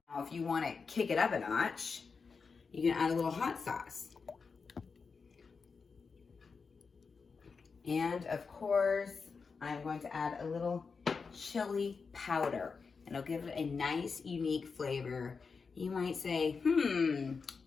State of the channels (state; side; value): quieter; right; 5.1 dB